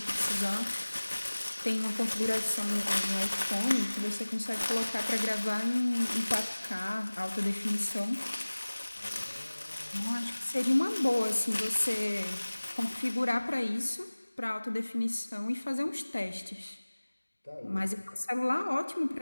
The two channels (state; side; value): inverted; both; correlation -1.00